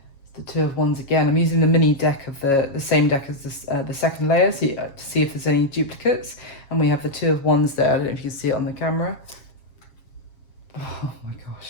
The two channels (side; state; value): right; late; 7.3 ms